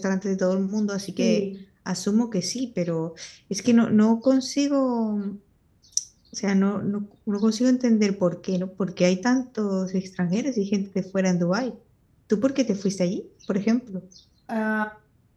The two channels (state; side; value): identical; both; correlation 1.00